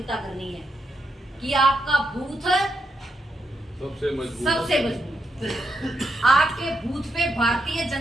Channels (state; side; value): normal; both; correlation 0.80